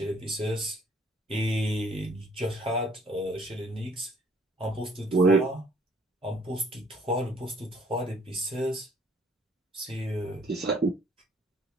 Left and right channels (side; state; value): both; normal; correlation 0.60